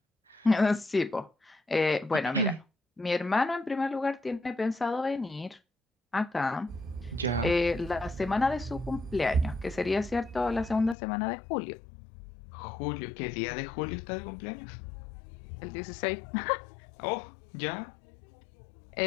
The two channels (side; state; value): right; drops out; at 11.0 s